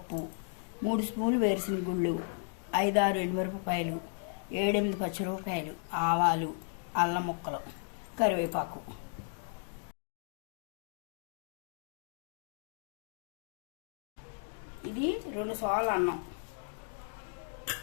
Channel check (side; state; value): right; silent; 55 dB below the other